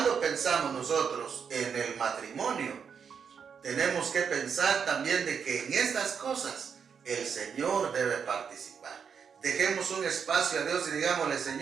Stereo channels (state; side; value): quieter; left; 6.7 dB